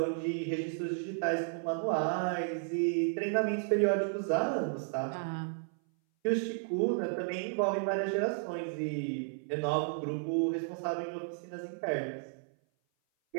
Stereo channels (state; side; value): silent; left; 56 dB below the other